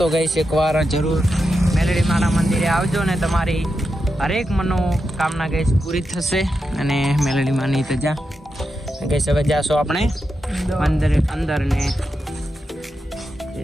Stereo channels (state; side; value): normal; both; correlation 0.87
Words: તો ગાઈસ એકવાર જરૂર મેલડી માના મંદિરે આવજો ને તમારી હરેક મનોકામના ગાઈસ પૂરી થશે અને મેલડી માની તજા ગાઈસ હવે જાશો આપણે અંદર ને